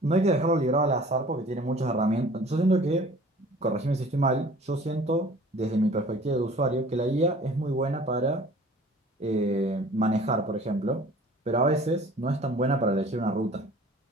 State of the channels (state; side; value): normal; both; correlation 0.48